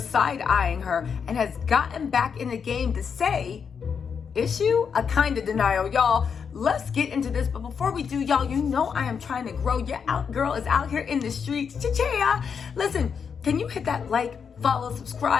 side-eyeing her and has gotten back in the game to say, issue a kind of denial. Y'all, let's get into this. But before we do, y'all, you know I am trying to grow. Your girl is out here in the streets. Cha-cha! Listen, can you hit that like, follow,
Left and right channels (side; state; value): right; quieter; 6.5 dB